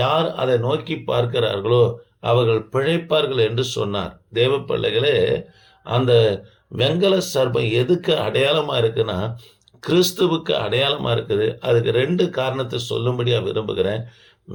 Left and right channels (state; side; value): identical; both; correlation 1.00